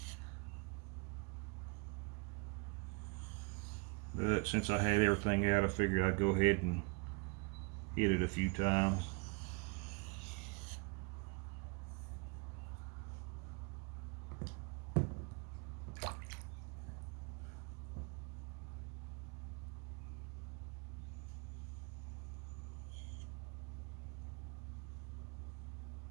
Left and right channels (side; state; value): left; quieter; 31.6 dB